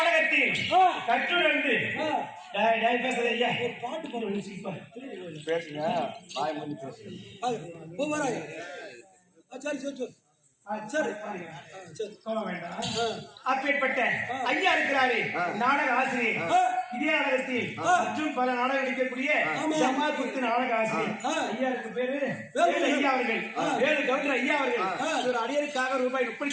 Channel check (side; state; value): both; identical; correlation 1.00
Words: கற்றுணர்ந்து பேசுறது ஐயா பாட்டு பாடு. பேசுங்க, வாய் மூடி பேசுங்க. சரி சரி சரி சரி சரி. சொல்ல வேண்டாம். அப்பேற்பட்ட ஐயா இருக்கிறாரே நாடக ஆசிரியர். இதே நாடகத்தில் மற்றும் பல நாடகம் நடிக்கக்கூடிய ஜமால் குத்து நாடக ஆசிரியர் ஐயாருக்கு பேரு வேலு ஐயா அவர்கள். வேலு கவுண்டர் ஐயா அவர்கள் ஒரு அடியருக்காக ரூபாய்